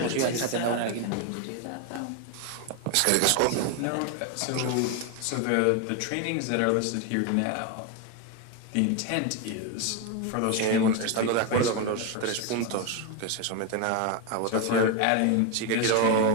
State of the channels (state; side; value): different; both; correlation 0.02